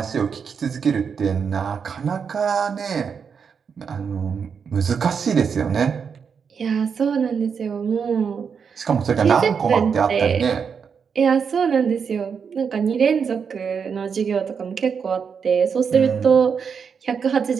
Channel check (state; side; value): quieter; left; 6.4 dB